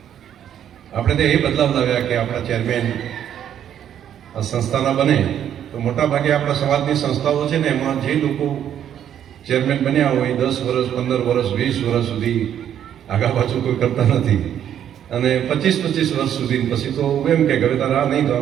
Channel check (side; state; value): left; quieter; 9.9 dB